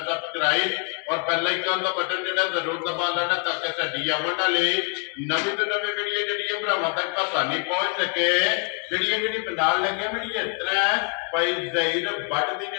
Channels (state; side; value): quieter; right; 35.5 dB